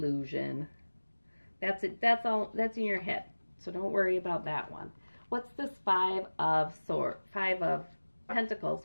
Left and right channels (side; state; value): both; inverted; correlation -1.00